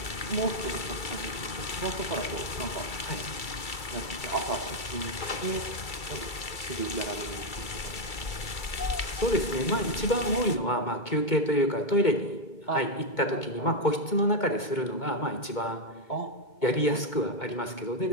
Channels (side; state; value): right; late; 2.3 ms